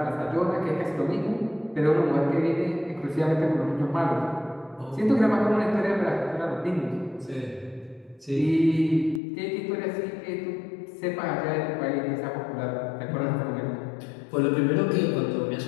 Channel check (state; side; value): drops out; right; at 9.2 s